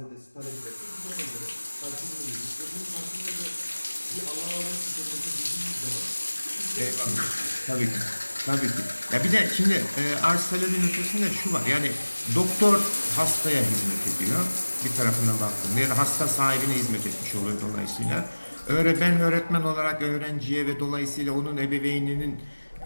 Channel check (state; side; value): inverted; both; correlation -1.00